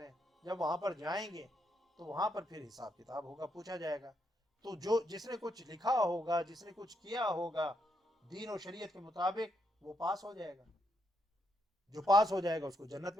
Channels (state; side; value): normal; both; correlation 0.78